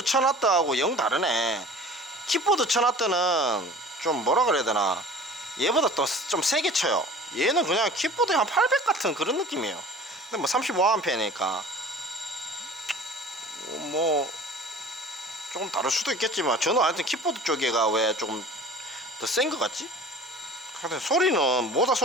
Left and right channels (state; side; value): normal; both; correlation 0.43